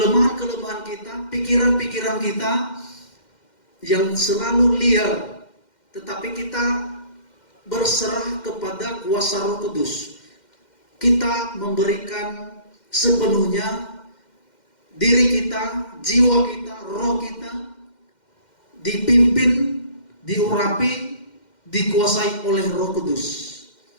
kita, pikiran-pikiran kita yang selalu liar, tetapi kita berserah kepada kuasa Roh Kudus. Kita memberikan sepenuhnya diri kita, jiwa kita, roh kita dipimpin, diurapi, dikuasai oleh Roh Kudus.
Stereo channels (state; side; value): late; right; 2.1 ms